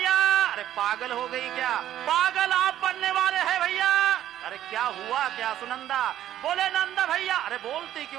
अरे पागल हो गई क्या? पागल आप बनने वाले हैं भैया. अरे क्या हुआ क्या सुनंदा? बोले नंद भैया. अरे बोलती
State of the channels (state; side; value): quieter; left; 12.0 dB